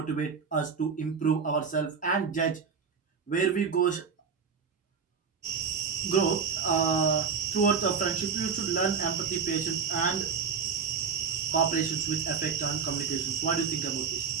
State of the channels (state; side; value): quieter; left; 5.9 dB